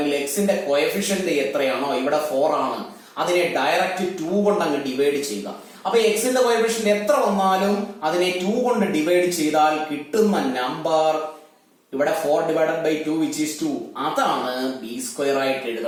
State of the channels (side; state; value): both; identical; correlation 1.00